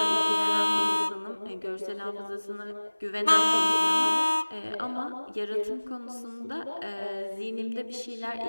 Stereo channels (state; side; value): inverted; both; correlation -1.00